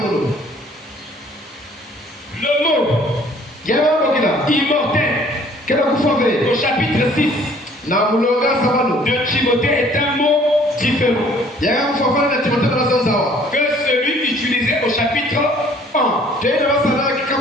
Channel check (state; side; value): normal; both; correlation 0.57